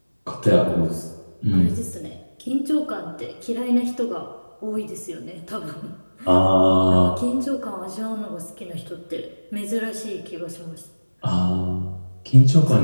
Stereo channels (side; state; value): both; inverted; correlation -1.00